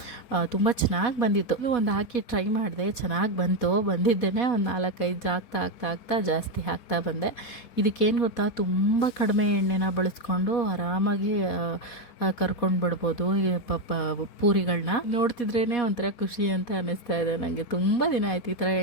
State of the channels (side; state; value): right; late; 4.2 ms